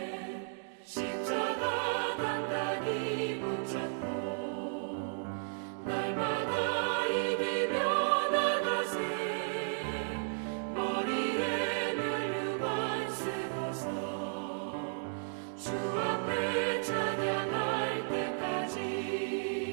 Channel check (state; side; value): silent; left; digital silence